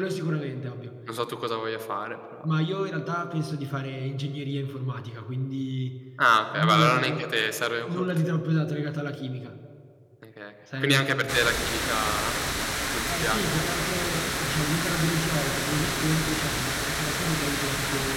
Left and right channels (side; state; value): both; identical; correlation 1.00